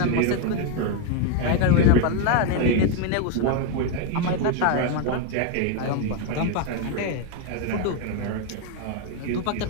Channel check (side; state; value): both; different; correlation 0.01